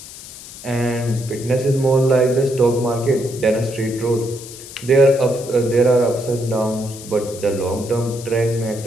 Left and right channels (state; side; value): noise; left; hiss, 15 dB below the sound